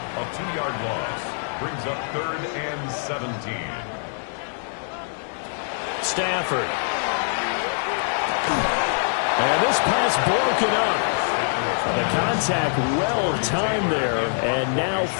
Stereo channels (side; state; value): right; silent; 63 dB below the other